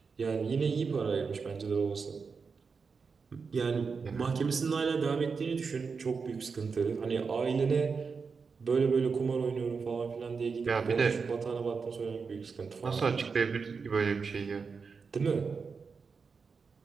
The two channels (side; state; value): left; quieter; 5.2 dB